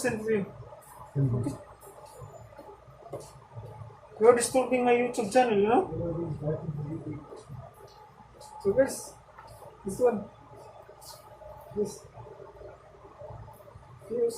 to you. Send it. You are disturbing my YouTube channel, you know? So guys, this one, this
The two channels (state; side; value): identical; both; correlation 1.00